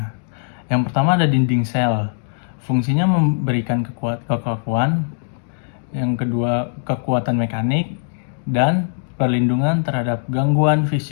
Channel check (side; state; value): right; silent; digital silence